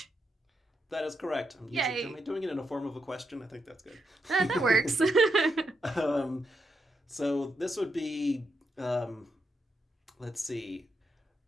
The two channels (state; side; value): normal; both; correlation 0.83